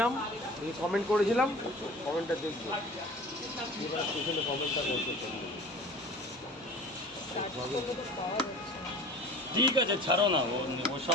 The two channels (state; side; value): normal; both; correlation 0.41